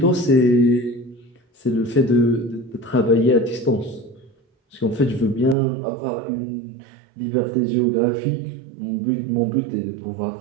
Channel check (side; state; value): left; drops out; at 5.6 s